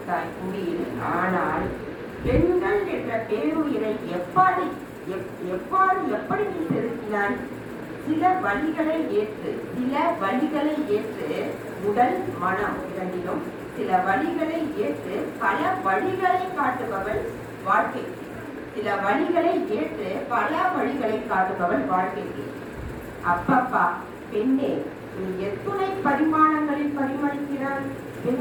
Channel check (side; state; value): both; identical; correlation 1.00